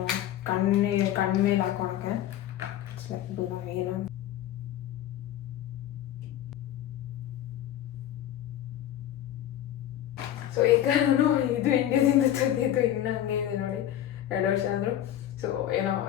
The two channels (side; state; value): right; quieter; 11.8 dB